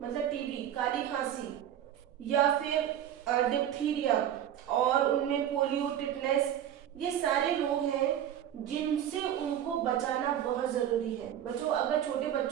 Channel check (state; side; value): quieter; left; 10.6 dB